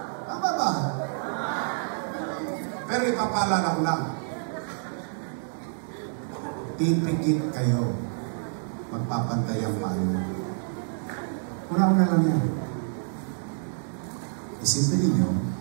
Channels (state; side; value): silent; left; digital silence